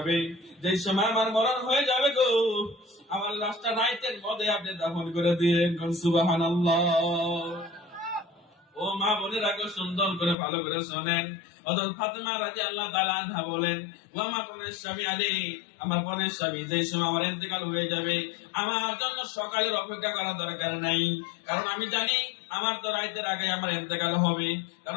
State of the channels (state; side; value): drops out; right; at 10.4 s